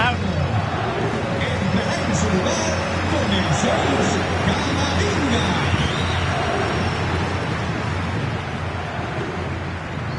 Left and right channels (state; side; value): identical; both; correlation 1.00